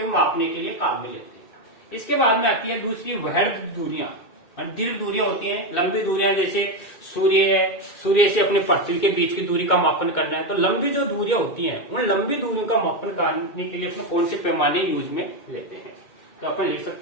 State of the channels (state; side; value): late; right; 2.2 ms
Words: मापने के लिए काम में लेते हैं। इसके बाद में आती है दूसरी वृहद दूरियां, और दीर्घ दूरियां होती हैं। लंबी दूरियां जैसे सूर्य है, सूर्य से अपने पृथ्वी के बीच की दूरी का मापन करना है। तो लंबी जो दूरियां होती हैं, उन लंबी दूरियों का मापन करने के लिए अपने कौन से पैमाने यूज में लेते हैं? तो अपन लिख